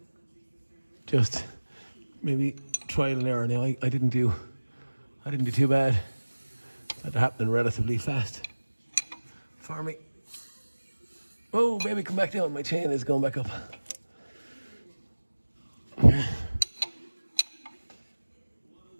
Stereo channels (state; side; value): inverted; both; correlation -1.00